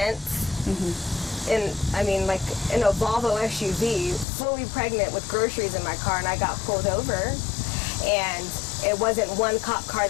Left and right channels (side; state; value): right; drops out; at 4.2 s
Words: And I mean, like in a Volvo SUV, fully pregnant with groceries in my car, and I got pulled over. And it wasn't one cop car